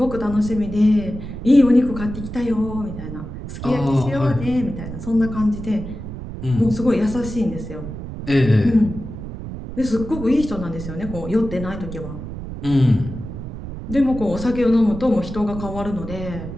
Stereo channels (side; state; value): right; noise; rumble, 9 dB below the sound